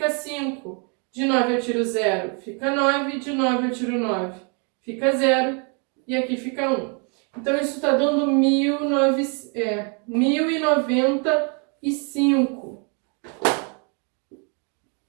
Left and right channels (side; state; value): left; quieter; 37.0 dB